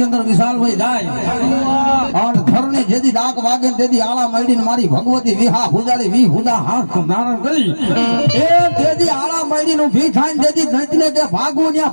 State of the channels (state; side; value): inverted; both; correlation -1.00